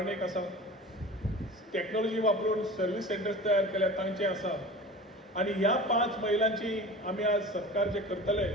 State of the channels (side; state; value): both; normal; correlation 0.37